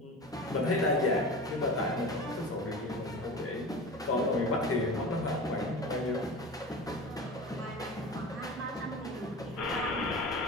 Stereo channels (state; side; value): normal; both; correlation 0.33